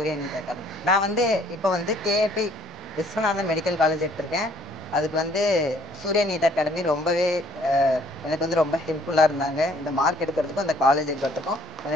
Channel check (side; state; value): both; normal; correlation 0.60